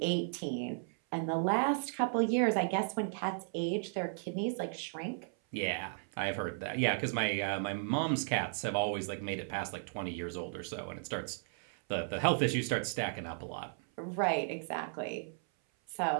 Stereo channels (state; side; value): silent; left; 54 dB below the other